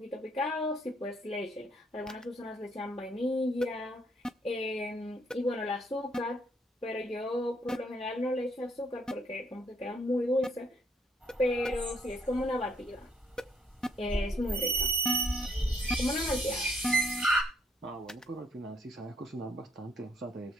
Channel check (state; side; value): normal; both; correlation 0.69